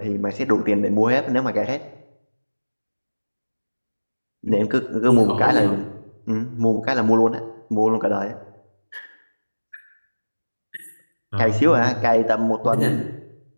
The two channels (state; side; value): inverted; both; correlation -1.00